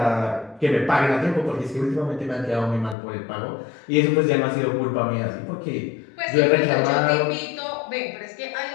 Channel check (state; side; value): drops out; right; at 3.0 s